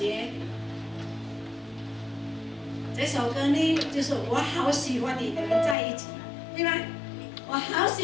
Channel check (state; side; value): drops out; right; at 5.8 s